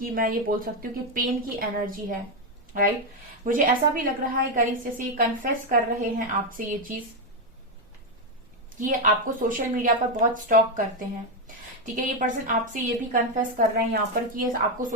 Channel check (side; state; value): both; normal; correlation 0.06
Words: मैं ये बोल सकती हूँ कि पेन की एनर्जी है। राइट, मुझे ऐसा भी लग रहा है गाइस जैसे ये कन्फेस कर रहे हैं आपसे ये चीज कि ये आपको सोशल मीडिया पर बहुत स्टॉक करते हैं। ठीक है, ये पर्सन आपसे ये भी कन्फेस कर रहे हैं यहाँ पर कि ये आपको